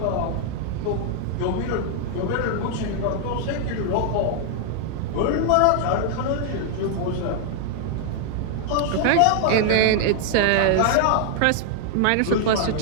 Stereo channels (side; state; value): both; different; correlation 0.00